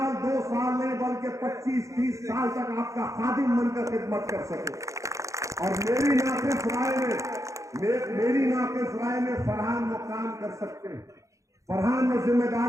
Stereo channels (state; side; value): late; left; 0.15 ms